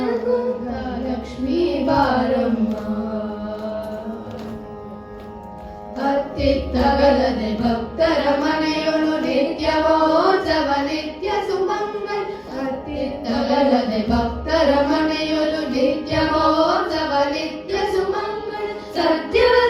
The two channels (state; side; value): identical; both; correlation 1.00